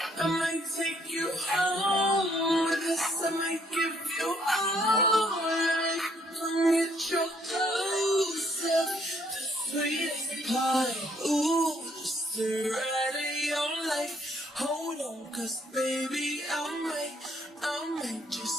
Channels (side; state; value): both; normal; correlation 0.67